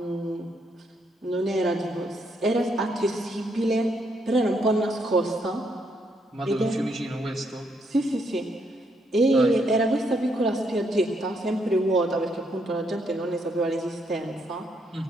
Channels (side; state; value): both; normal; correlation 0.75